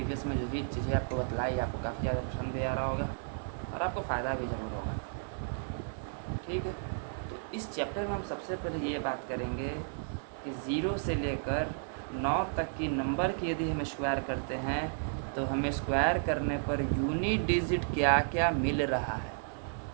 में जो भी चीज़ें आपको बतलाई आपको काफ़ी ज़्यादा पसंद भी आ रहा होगा और आपको फ़ायदा भी ज़रूर होगा। ठीक है, तो इस चैप्टर में हम सबसे पहले ये बात करेंगे कि 0 से लेकर 9 तक की नंबर की यदि हम स्क्वायर करते हैं तो हमें स्क्वायर करने पर यूनिट डिजिट क्या क्या मिल रहा है।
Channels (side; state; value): left; silent; 56 dB below the other